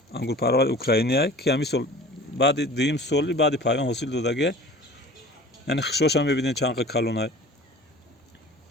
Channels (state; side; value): normal; both; correlation 0.43